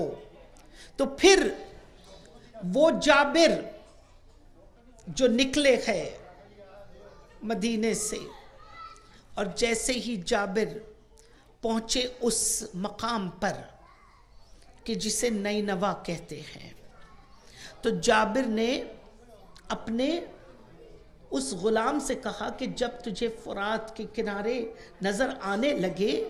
تو پھر وہ جابر جو نکلے ہیں مدینے سے، اور جیسے ہی جابر پہنچے اس مقام پر کہ جسے نینوا کہتے ہیں، تو جابر نے اپنے اس غلام سے کہا کہ جب تجھے فرات کے کنارے نظر آنے لگے،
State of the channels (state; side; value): identical; both; correlation 1.00